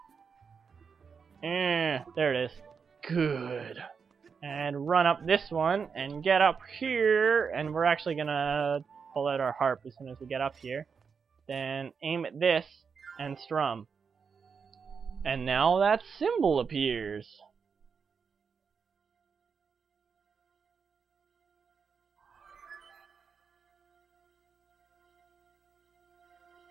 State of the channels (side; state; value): left; quieter; 5.9 dB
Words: There it is. Good. And run up this one, and get up here, and we're actually gonna pull out our harp as soon as we get up here. Then aim at this, and strum. And now that symbol appears.